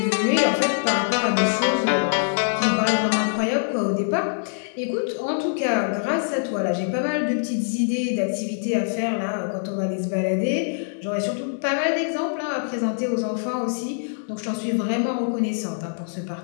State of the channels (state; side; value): silent; right; digital silence